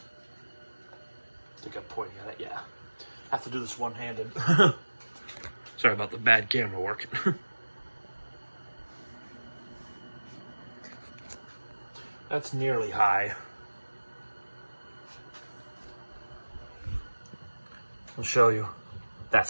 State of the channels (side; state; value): both; inverted; correlation -1.00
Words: I think I'm pointing at it, yeah. I have to do this one-handed. Sorry about the bad camera work. That's nearly high. I'll show you. That's